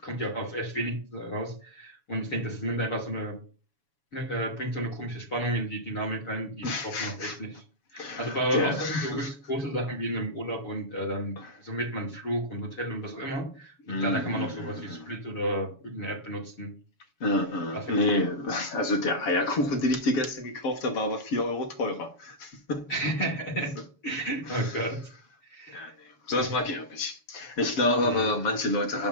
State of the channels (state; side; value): late; right; 7.1 ms